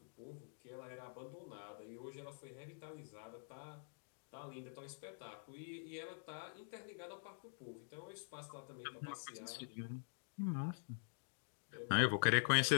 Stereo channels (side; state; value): right; silent; digital silence